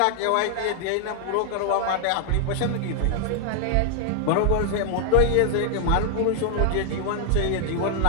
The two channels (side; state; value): both; different; correlation 0.00